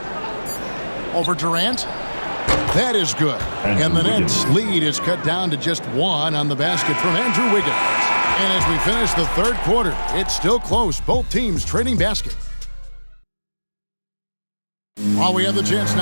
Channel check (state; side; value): inverted; both; correlation -1.00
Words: Over Durant. That is good. And the Nets' lead is cut down to just 1 on the basket from Andrew Wiggins. And as we finish the 3rd quarter, it's still close. Both teams trading basket. While we have the chance